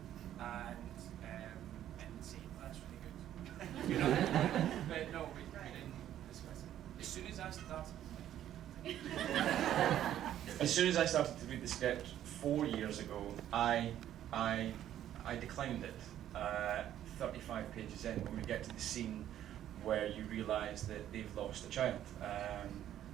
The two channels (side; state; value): left; quieter; 11.5 dB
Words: and say, well, that's really good. You know? But no, we didn't discuss it. As soon as I started to read the script 4 years ago, I declined it. 35 pages in, when we get to the scene where you realise that they've lost a child.